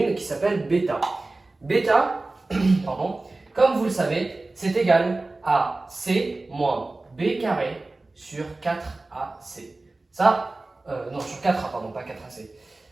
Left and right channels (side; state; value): left; quieter; 3.1 dB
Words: qui s'appelle bêta. Bêta, pardon, comme vous le savez, c'est égal à c moins b carré sur 4ac. Ça, non, sur 4A, pardon, pas 4AC.